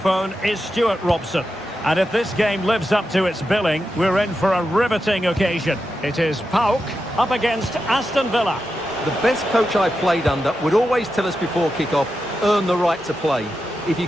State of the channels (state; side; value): normal; both; correlation 0.89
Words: is Stuart Robson. And if this game lives up to its billing, we're in for a riveting occasion. It is PAOK up against Aston Villa. The best coach I played under would always tell us before kick-off, earn the right to play. If you